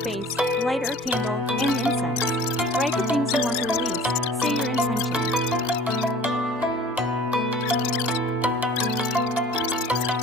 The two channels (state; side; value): normal; both; correlation 0.47